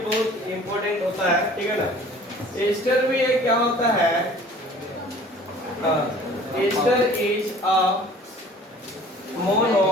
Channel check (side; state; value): both; normal; correlation 0.49